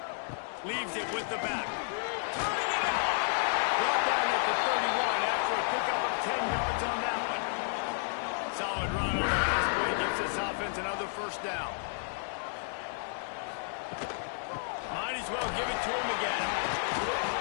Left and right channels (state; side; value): silent; right; digital silence